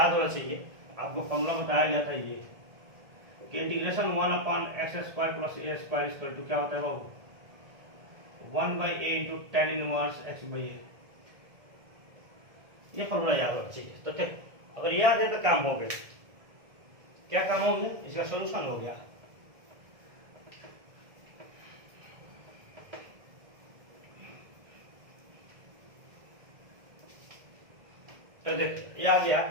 होना चाहिए, आपको फॉर्मूला बताया गया था ये कि integration 1 upon X square plus a square equal to क्या होता है बाबू, 1 by a into ten inverse x by a। ये फॉर्मूला याद होना चाहिए। तो देखो अगर याद है तो काम हो गया। क्या काम हो गया, इसका सॉल्यूशन हो गया। तो देखो ये आ गया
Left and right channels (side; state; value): left; late; 1.7 ms